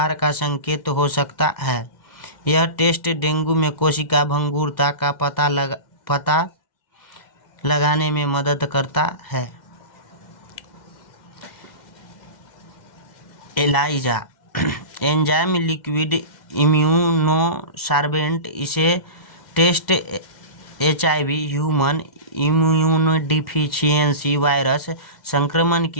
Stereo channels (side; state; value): right; late; 2.1 ms